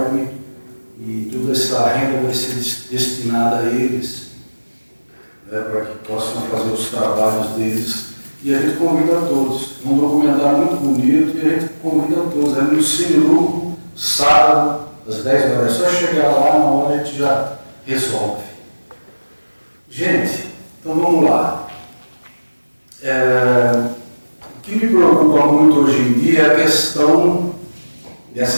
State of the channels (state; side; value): inverted; both; correlation -1.00